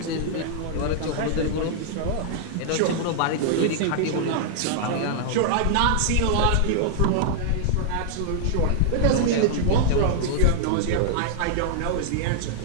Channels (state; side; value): different; both; correlation -0.01